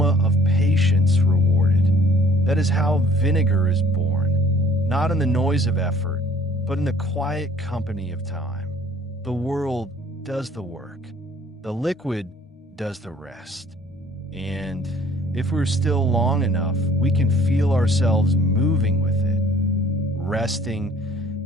of patience rewarded. That is how vinegar is born, not in the noise of effort, but in the quiet company of time. The world does the work. The liquid does the rest. And if we're still long enough, we can feel ourselves moving with it, resting,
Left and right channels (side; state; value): both; normal; correlation 0.55